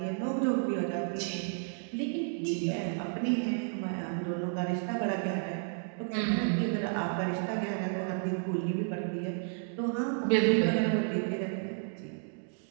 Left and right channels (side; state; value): left; silent; 56 dB below the other